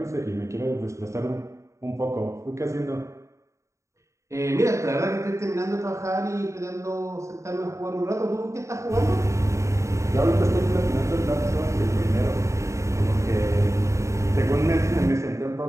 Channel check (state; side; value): late; left; 0.14 ms